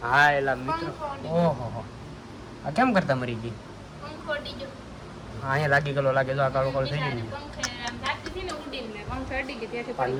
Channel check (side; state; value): both; identical; correlation 1.00